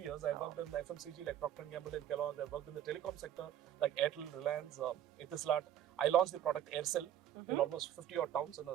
years. I've worked in FMCG like Procter & Gamble and Kellogg. I've worked in the telecom sector like Airtel, Reliance, Etisalat. I launched the product Aircel in almost 50 odd towns in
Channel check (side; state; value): left; quieter; 10.9 dB